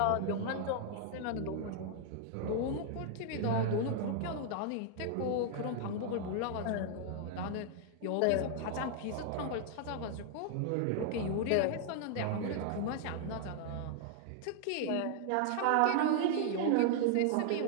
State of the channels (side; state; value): both; different; correlation 0.00